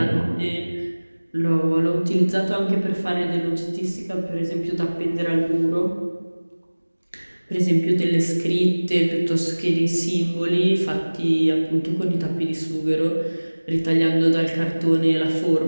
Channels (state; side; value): inverted; both; correlation -1.00